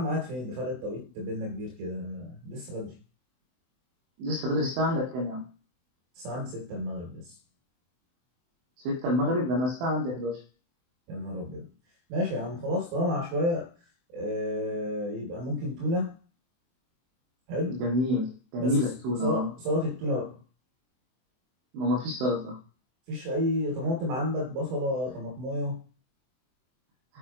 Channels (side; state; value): left; late; 24 ms